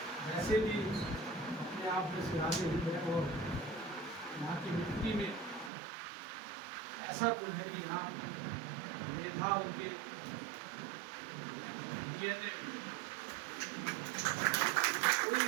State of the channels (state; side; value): drops out; left; at 5.7 s